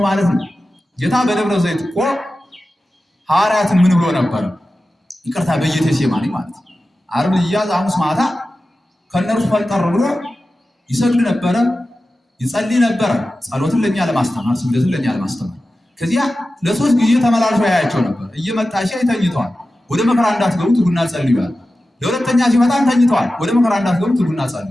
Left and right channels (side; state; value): both; normal; correlation 0.94